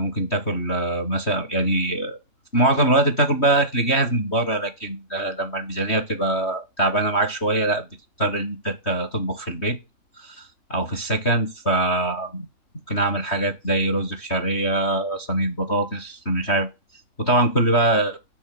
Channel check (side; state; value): right; late; 3.2 ms